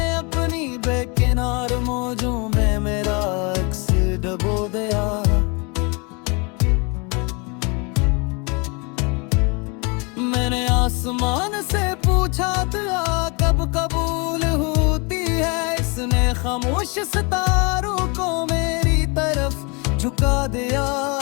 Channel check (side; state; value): right; quieter; 31.0 dB